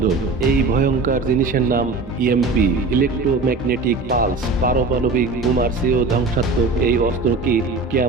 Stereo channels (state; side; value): quieter; left; 3.7 dB